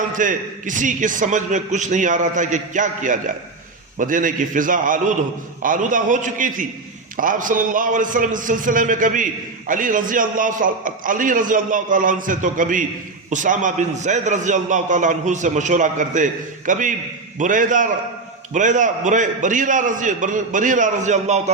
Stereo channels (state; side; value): quieter; left; 3.7 dB